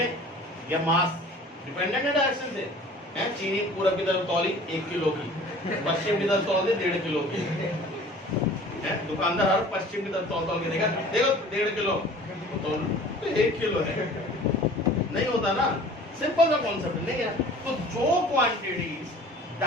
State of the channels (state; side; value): normal; both; correlation 0.46